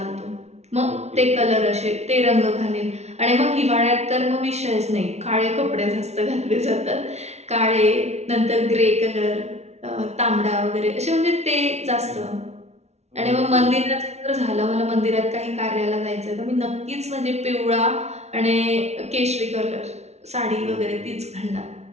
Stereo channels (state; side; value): late; left; 0.31 ms